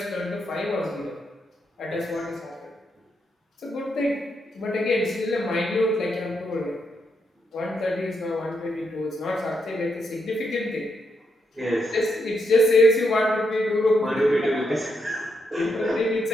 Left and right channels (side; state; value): both; normal; correlation 0.81